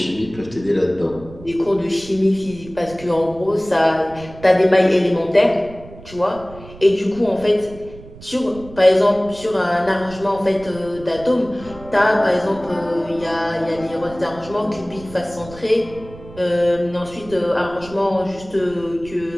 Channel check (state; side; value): noise; right; rumble, 18 dB below the sound